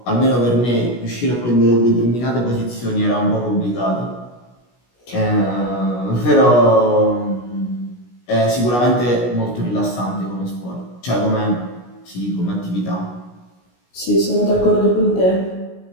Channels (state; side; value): late; right; 16 ms